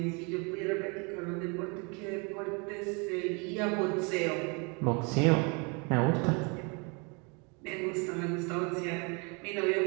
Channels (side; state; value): left; quieter; 32.5 dB